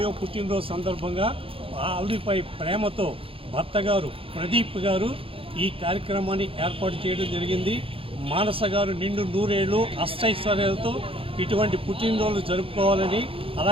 పుట్టినరోజు సందర్భంగా ఆవిడపై ప్రేమతో భర్త గారు ప్రదీప్ గారు ఈ కార్యక్రమాన్ని ఏర్పాటు చేయడం జరిగింది. మానస గారు నిండు 100 ఏళ్ళు అష్టైశ్వర్యాలతో ఇటువంటి పుట్టినరోజు జరుపుకోవాలని,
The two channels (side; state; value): left; late; 0.27 ms